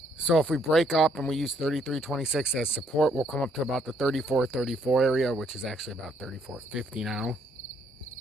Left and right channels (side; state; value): both; normal; correlation 0.68